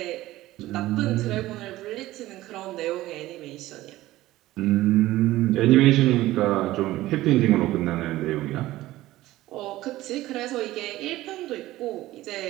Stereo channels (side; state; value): left; quieter; 16.4 dB